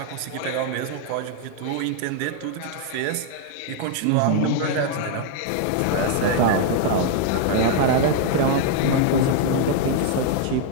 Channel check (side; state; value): both; different; correlation 0.00